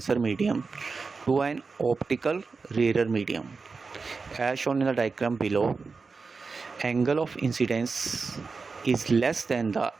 medium to an optical rarer medium. As shown in the diagram below, angle of incidence is less than the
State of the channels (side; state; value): left; quieter; 4.5 dB